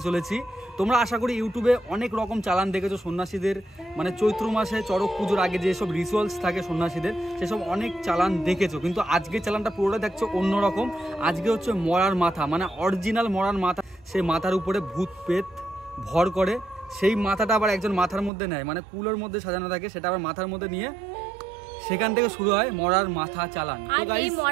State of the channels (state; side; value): drops out; left; at 18.3 s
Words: চলেছি, তোমরা আশা করি ইউটিউবে অনেক রকম চালান দেখেছো সন্ন্যাসীদের, মানে চৈত্র মাসে চড়ক পুজোর আগে যেসব রিচুয়ালস থাকে সন্ন্যাসীদের, সেসব অনেক চালান দেখেছো। কিন্তু আজকে চালানটা পুরোটা দেখছো অন্যরকম। আজকে হচ্ছে মরার মাথা, মানে অরিজিনাল মরার মাথা। সেই মাথার উপরে ভূত পেত ভর করে, সেই মাথাটা আবার একজন মাথার মধ্যে নেয়, মানে কুলোর মধ্যে সাজানো থাকে, সেটা আবার মাথার মধ্যে নিয়ে সেখান থেকে শুরু হয় মরার মাথা চালান। আর এই